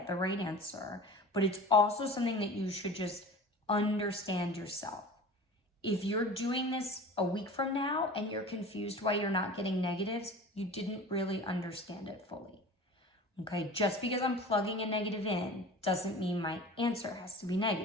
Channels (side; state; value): both; normal; correlation 0.38